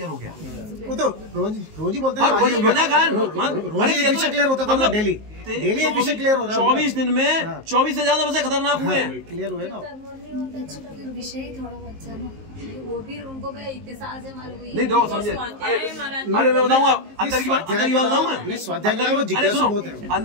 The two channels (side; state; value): left; late; 19 ms